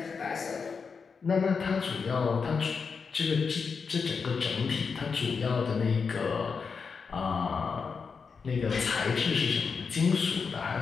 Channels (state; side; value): quieter; right; 5.5 dB